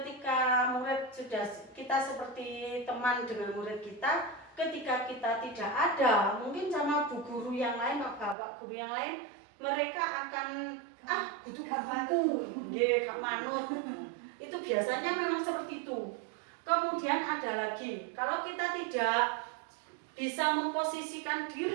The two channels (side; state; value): left; drops out; at 8.3 s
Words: murid sudah kita seperti teman dengan murid kita, ketika kita tidak ada, mungkin sama bu guru yang lain, bapak guru yang lain, mereka akan butuh buku, gak manut. Itu biasanya memang seperti itu. Kemudian ada lagi, kalau kita tidak bisa memposisikan